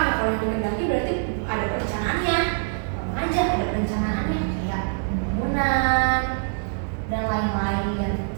ya kalau yang dikehendaki berarti ada perencanaannya, aja ada perencanaannya kayak pembangunan dan lain-lain.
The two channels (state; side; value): silent; left; digital silence